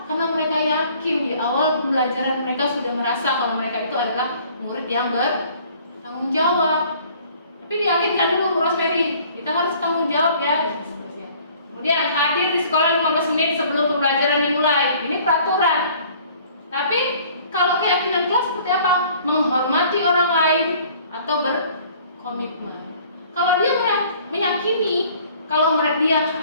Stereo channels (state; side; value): inverted; both; correlation -0.54